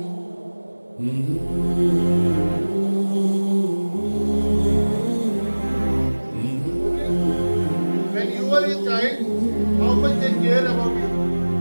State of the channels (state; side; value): inverted; both; correlation -1.00